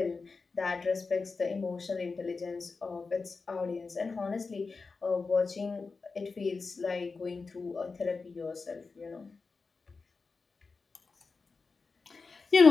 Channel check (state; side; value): quieter; right; 4.4 dB